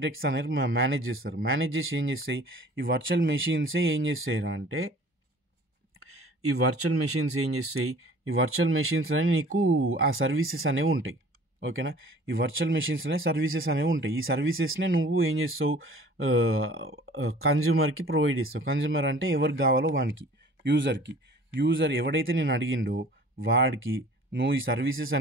అనేది మేనేజ్ చేస్తారు. మేనేజ్ చేసి ఏం చేస్తాయి, ఈ వర్చువల్ మెషిన్సే ఏం చేస్తాయిరా అంటే, ఈ వర్చువల్ మెషిన్స్ అని నీకు ఆ సర్వీసెస్ అనేవి ఉంటాయి. ఓకేనా, ఈ వర్చువల్ మెషిన్స్ అనే సర్వీసెస్ అనేవి ఉంటాయి. ఈ సర్వీసెస్నే నువ్వు ఏం చేస్తావు, కన్జ్యూమర్కి ప్రొవైడ్ చేస్తావు. కన్జ్యూమర్ అంటే ఎవరికి కావాలో వానికి, యూజర్ ఎవడైతే నేను అడిగిండో వాడికి నువ్వు ఈ సర్వీసెస్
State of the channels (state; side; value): normal; both; correlation 0.48